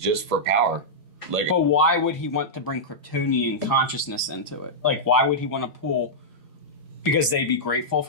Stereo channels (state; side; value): normal; both; correlation -0.10